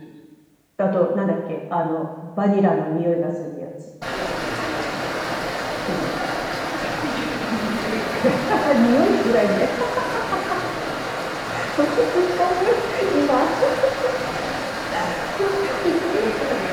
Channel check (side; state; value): both; identical; correlation 1.00